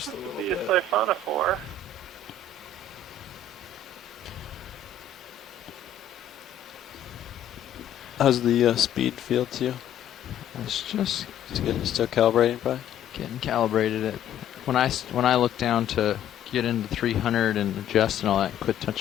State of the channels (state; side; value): quieter; right; 6.8 dB